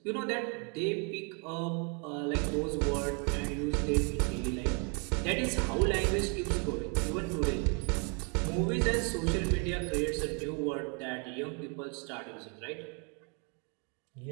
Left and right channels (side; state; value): left; quieter; 35.9 dB